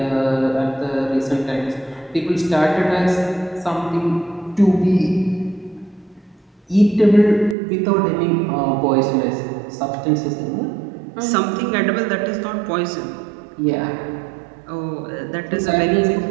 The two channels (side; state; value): left; drops out; at 7.6 s